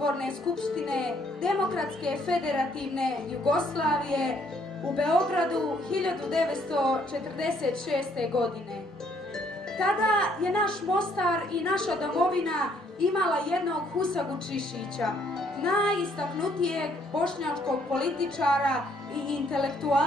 skupštine Demokratske federativne Jugoslavije u Beogradu 1946. godine. Tada je naš Mostar i naša domovina imala jednog Husagu Čišića, najistaknutijeg bošnjačkog političara i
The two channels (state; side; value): normal; both; correlation 0.67